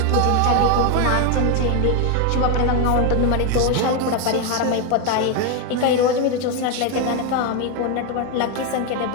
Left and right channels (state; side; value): different; both; correlation 0.01